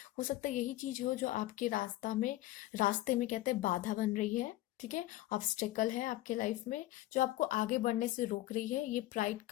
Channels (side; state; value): right; quieter; 16.2 dB